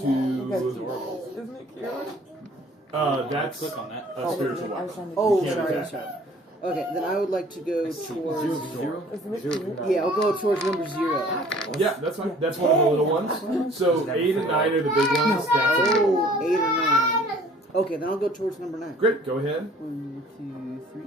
Isn't it cute? That's Click on that. a spiritual I was weapon. trying to Oh, You can't sorry, attack sorry. that. Okay, then I would like to go towards... Isn't it cute? Yeah, I'll go towards number 0. Yeah, that's fine. That's one of the little ones. So 8 and 9 are the big ones. That's a little one. Oh, 8 or 9. Okay, then I'll go towards number 9. Great, go ahead. 1,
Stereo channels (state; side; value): normal; both; correlation 0.53